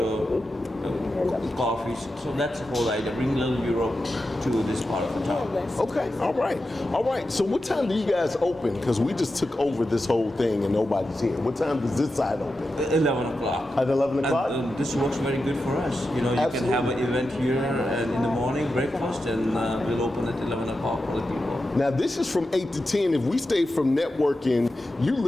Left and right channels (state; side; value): normal; both; correlation 0.90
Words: coffees. So that's the whole idea. Bring a little Europe to this part of the town. Okay, all right. So what time do you guys open? Because we just took over this whole thing and nobody's here. What time does this side open? 11 o'clock. At 11 o'clock? And this works very good for us. You Absolutely. Can have an event here and in the morning, breakfast, and we'll open at 11 o'clock for the people. Now this is from 8 to 10. If we stay from networking, you